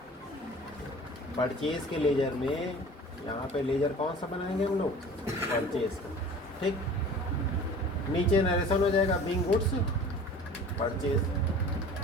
परचेज के लेजर में यहाँ पे लेजर कौन सा बनाएंगे हम लोग? परचेज का, ठीक। नीचे नरेशन हो जाएगा बीइंग गुड्स परचेज।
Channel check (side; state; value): both; normal; correlation 0.43